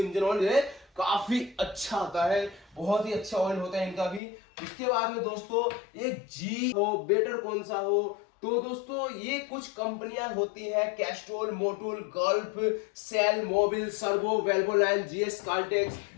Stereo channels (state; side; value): drops out; right; at 4.2 s